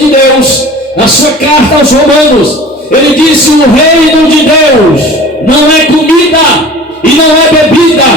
Deus, na sua carta aos Romanos. Ele disse: o reino de Deus não é comida e não é bebida,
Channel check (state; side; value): normal; both; correlation 0.41